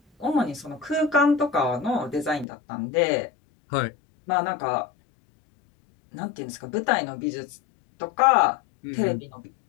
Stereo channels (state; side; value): drops out; right; at 2.5 s